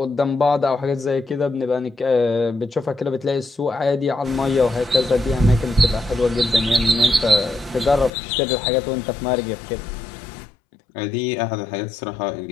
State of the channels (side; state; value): right; drops out; at 8.1 s